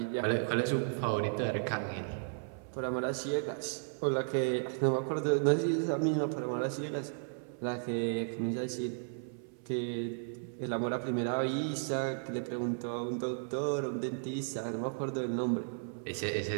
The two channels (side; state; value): left; silent; 55 dB below the other